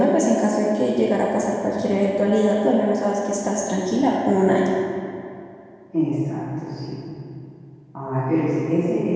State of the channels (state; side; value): identical; both; correlation 1.00